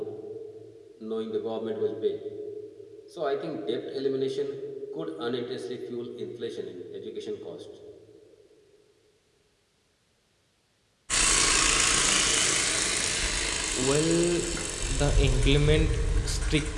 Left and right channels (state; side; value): identical; both; correlation 1.00